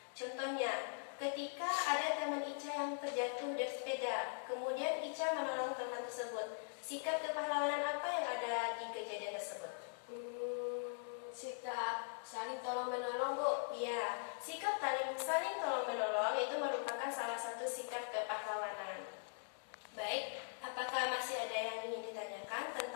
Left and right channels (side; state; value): right; silent; digital silence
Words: Contohnya, ketika ada teman Ica yang terjatuh dari sepeda, kemudian Ica menolong teman tersebut. Sikap kepahlawanan apa yang ada di kejadian tersebut? Sikap saling tolong menolong, Bu. Ya, sikap saling tolong menolong itu merupakan salah satu sikap kepahlawanan. Baik, apakah masih ada yang ingin ditanyakan